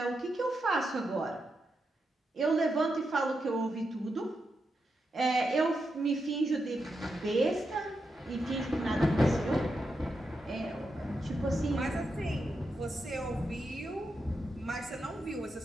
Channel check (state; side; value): normal; both; correlation 0.86